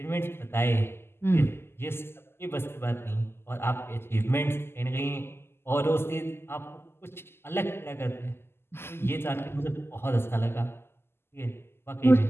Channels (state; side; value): late; right; 0.12 ms